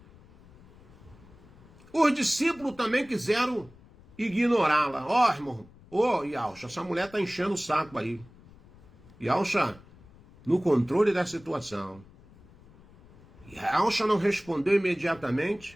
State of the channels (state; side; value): noise; left; rumble, 24 dB below the sound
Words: Os discípulos também quiseram ignorá-la. Ó, irmão, Yalcha, essa mulher está enchendo o saco aí. Yalcha, no controle da situação. Yalcha não respondeu